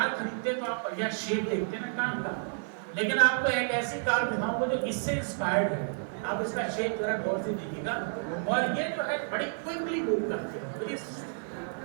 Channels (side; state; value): left; silent; digital silence